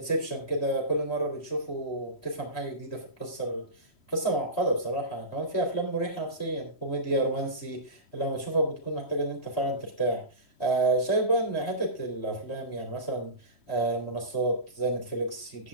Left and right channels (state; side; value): late; right; 3.1 ms